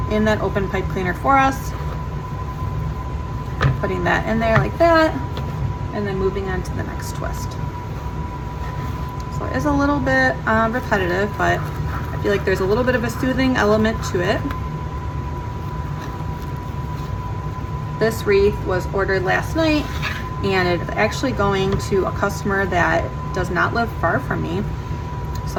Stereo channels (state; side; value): identical; both; correlation 1.00